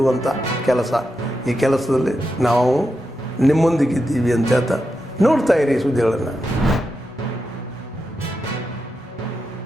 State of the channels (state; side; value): normal; both; correlation 0.87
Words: ಕೆಲಸ. ಈ ಕೆಲಸದಲ್ಲಿ ನಾವು ನಿಮ್ಮೊಂದಿಗಿದ್ದೀವಿ ಅಂತ ಹೇಳ್ತಾ ನೋಡ್ತಾ ಇರಿ ಈ ಸುದ್ದಿಗಳನ್ನು.